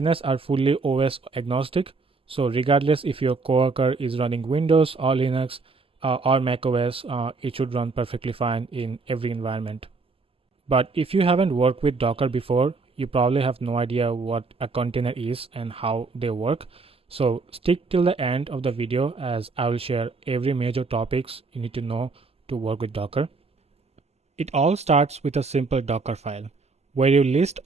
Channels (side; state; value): left; quieter; 4.1 dB